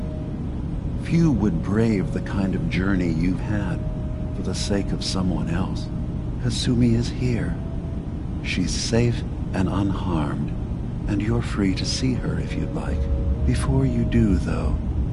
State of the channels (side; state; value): both; identical; correlation 1.00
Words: Few would brave the kind of journey you've had for the sake of someone else. Kasumi is here. She's safe and unharmed, and you're free to see her if you'd like. Before you do, though,